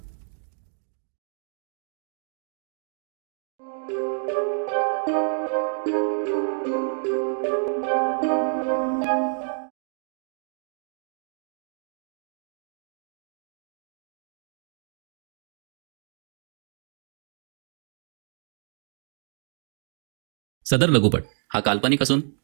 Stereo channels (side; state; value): left; silent; 58 dB below the other